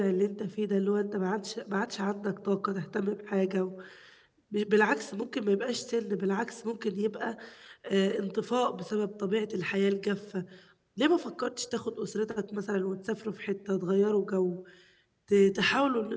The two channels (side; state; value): both; identical; correlation 1.00